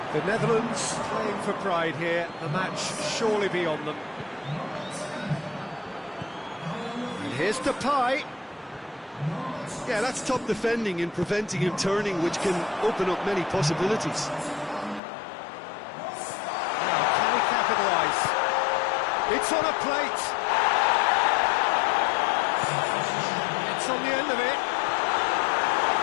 The Netherlands playing for pride here, the match surely beyond them. And here's Depay. Yeah, that's top defending and preventing him turning, which can open up many possibilities. Now, can he capitalise? It's on a plate. It's on the end of it.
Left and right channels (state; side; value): drops out; right; at 15.0 s